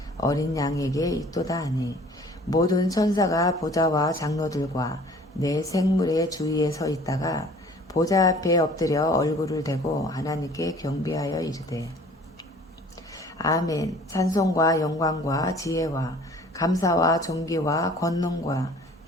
어린 양에게 있도다 하니 모든 천사가 보좌와 장로들과 내 생물의 주위에 서 있다가 보좌 앞에 엎드려 얼굴을 대고 하나님께 경배하여 이르되 아멘. 찬송과 영광과 지혜와 감사와 존귀와 권능과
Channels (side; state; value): both; normal; correlation 0.50